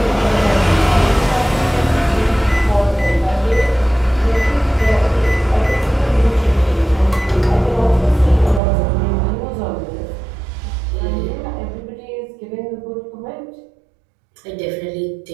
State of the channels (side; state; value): left; drops out; at 8.6 s